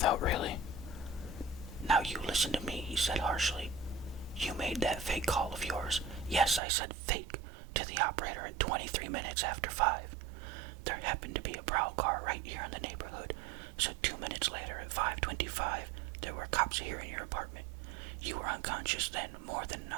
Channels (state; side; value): drops out; left; at 6.6 s